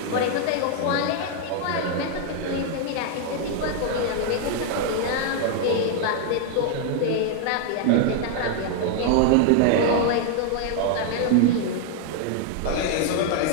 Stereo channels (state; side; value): different; both; correlation 0.00